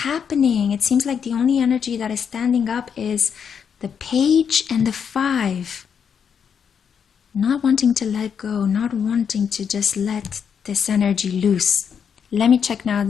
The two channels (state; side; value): quieter; right; 7.2 dB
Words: It seems like the only energy that is standing up is the Page and the Five. Not wanting to let go, not wanting to just let this energy loose. Let me check now